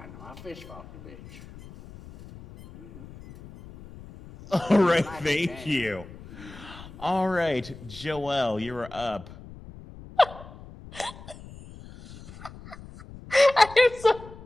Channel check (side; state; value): left; noise; rumble, 17 dB below the sound